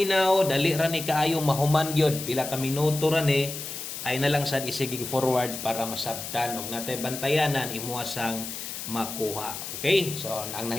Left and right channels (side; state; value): left; noise; hiss, 8 dB below the sound